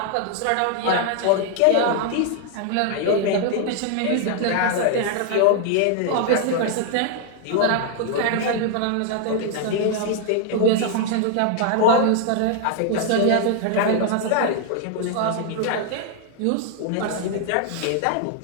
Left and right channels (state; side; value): different; both; correlation 0.00